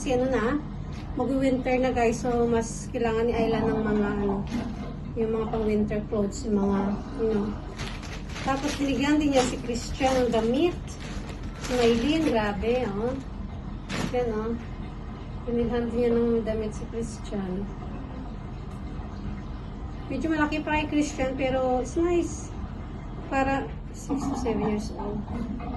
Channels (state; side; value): identical; both; correlation 1.00